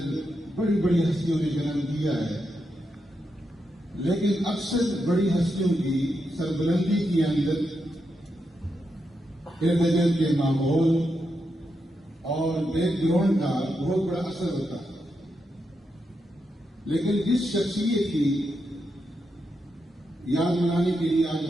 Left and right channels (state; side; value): normal; both; correlation 0.85